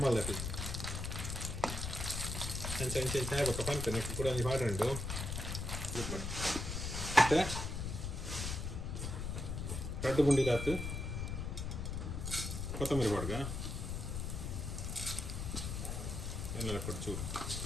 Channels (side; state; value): left; noise; rumble, 3 dB below the sound